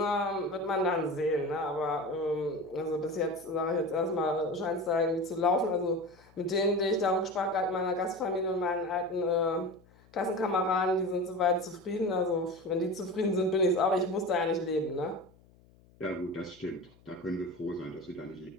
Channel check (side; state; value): left; noise; hum, 28 dB below the sound